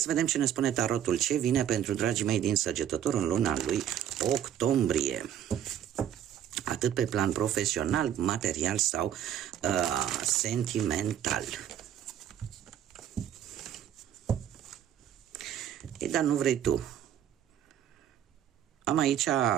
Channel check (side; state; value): left; quieter; 10.2 dB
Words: să vedem ce ne spune tarotul, ce vine pentru dragii mei din Săgetător în luna lui octombrie. Atât pe plan profesional, material sau sentimental. Ei, dar nu vrei tu. Am aici